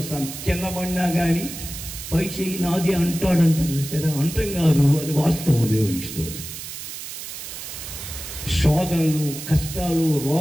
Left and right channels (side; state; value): right; noise; hiss, 9 dB below the sound